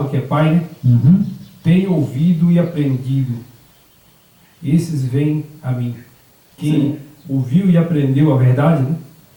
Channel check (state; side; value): identical; both; correlation 1.00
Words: que é Pai, né? Uhum. Tem ouvido e aprendido. Esses vêm a mim. Quem ouviu e aprendeu a verdade, né?